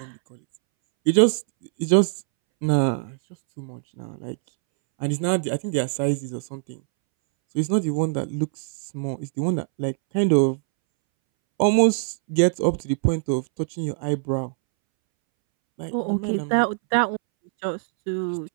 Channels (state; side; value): silent; left; 63 dB below the other